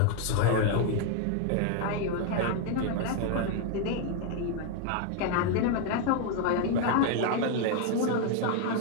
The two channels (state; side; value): different; both; correlation 0.01